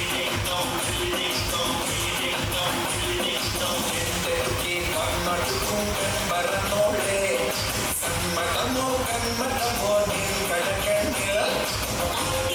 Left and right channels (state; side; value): identical; both; correlation 1.00